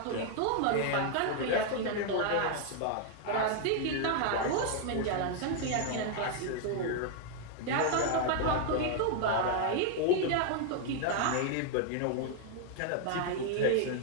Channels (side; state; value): both; different; correlation 0.00